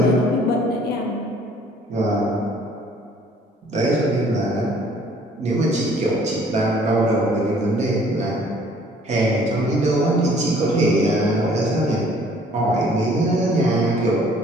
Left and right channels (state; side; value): normal; both; correlation 0.57